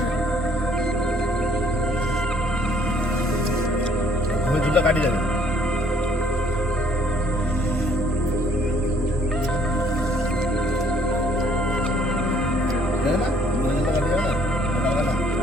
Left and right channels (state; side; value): normal; both; correlation 0.63